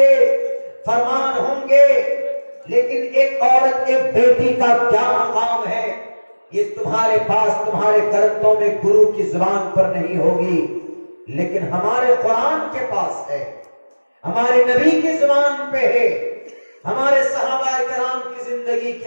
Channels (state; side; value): inverted; both; correlation -1.00